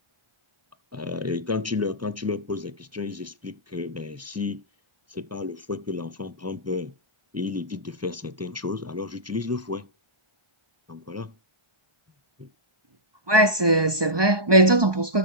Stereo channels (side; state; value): left; late; 1.2 ms